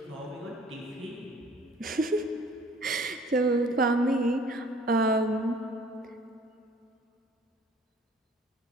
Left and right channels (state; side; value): normal; both; correlation 0.53